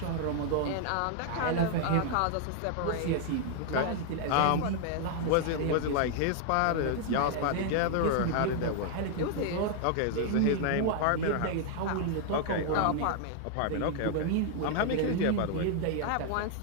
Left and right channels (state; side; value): different; both; correlation 0.00